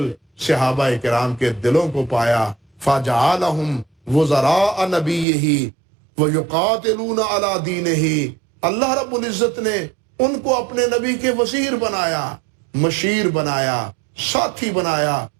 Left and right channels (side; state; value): left; drops out; at 5.2 s